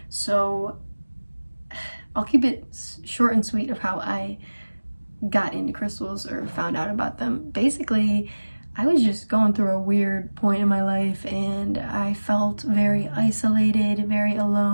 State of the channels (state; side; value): inverted; both; correlation -1.00